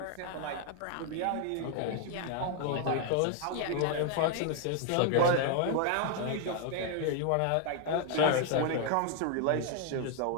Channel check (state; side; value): different; both; correlation 0.00